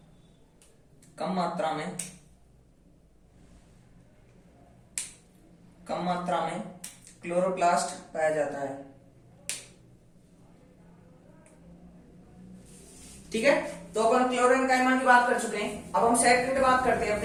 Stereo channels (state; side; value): identical; both; correlation 1.00